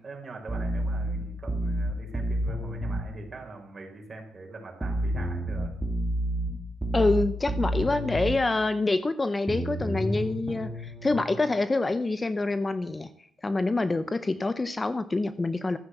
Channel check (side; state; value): both; normal; correlation 0.91